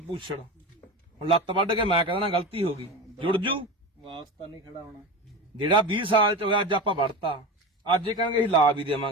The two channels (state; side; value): normal; both; correlation 0.26